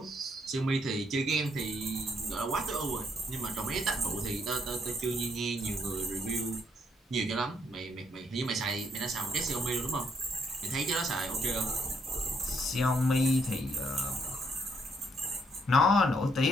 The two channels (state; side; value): normal; both; correlation 0.71